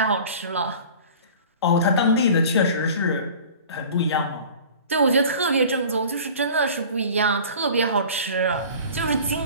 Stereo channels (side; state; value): both; inverted; correlation -0.42